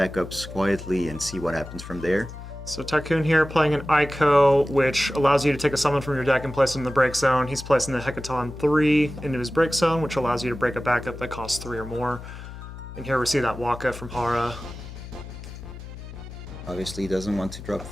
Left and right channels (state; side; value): noise; left; hum, 12 dB below the sound